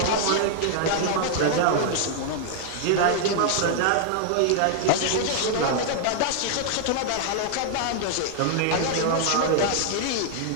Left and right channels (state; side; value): different; both; correlation 0.00